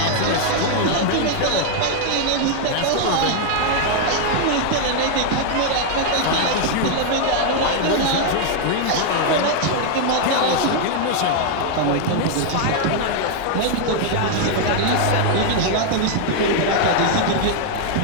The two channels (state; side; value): different; both; correlation 0.00